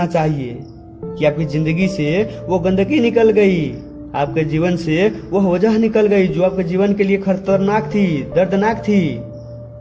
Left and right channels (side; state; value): both; identical; correlation 1.00